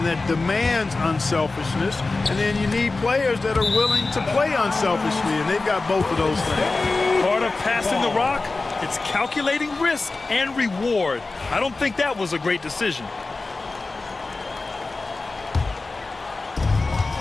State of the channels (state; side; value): quieter; right; 3.5 dB